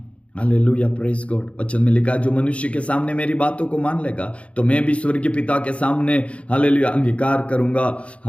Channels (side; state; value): right; late; 0.062 ms